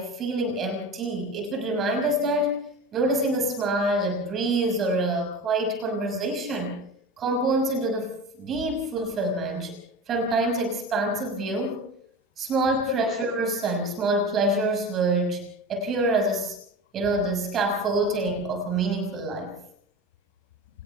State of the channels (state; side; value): normal; both; correlation 0.31